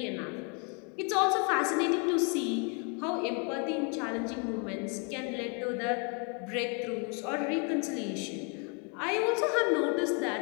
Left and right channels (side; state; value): right; quieter; 36.7 dB